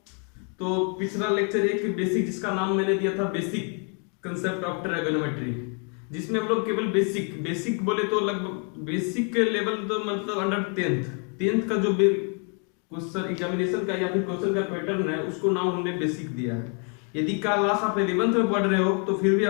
तो पिछला लेक्चर एक बेसिक, जिसका नाम मैंने दिया था बेसिक कंसेप्ट ऑफ ट्रायगोनोमेट्री, जिसमें हम लोग केवल बेसिक बोले तो लगभग बेसिक के लेवल तो मतलब अंडर टेंथ का जो क्वेश्चन एग्जामिनेशन का या फिर क्वेश्चन का पैटर्न है उसको नाम हमने बेसिक दिया है। यदि क्लास आप 11th में पढ़ रहे हो तो फिर भी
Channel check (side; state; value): right; quieter; 38.1 dB